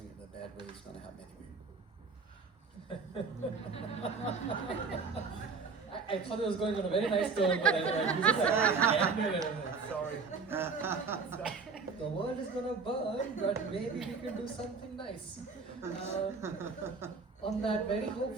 it in a bad way is going to have many I thought it was going on a very nice tone, but Sorry. The world is gonna burn, but maybe we can do something nice. On that very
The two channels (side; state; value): left; quieter; 4.8 dB